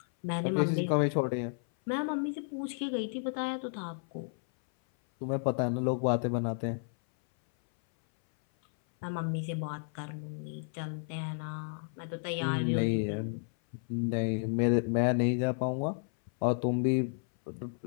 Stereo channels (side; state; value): right; silent; 56 dB below the other